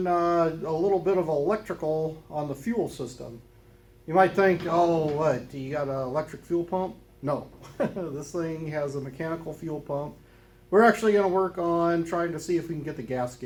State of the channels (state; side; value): identical; both; correlation 1.00